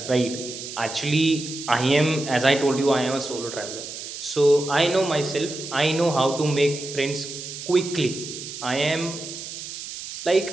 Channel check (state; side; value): noise; right; hiss, 10 dB below the sound